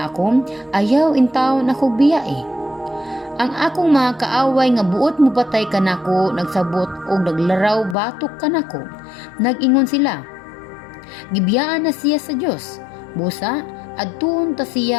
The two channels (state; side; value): drops out; right; at 8.0 s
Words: ako, ayaw in taon ako biyae. Ang akong mga kaaway nga buot mo patay kanako, nagsabot og naglaraw batok kanako. Nag-ingon sila, gibiyaan na siya sa Dios. Busa, adtuon ta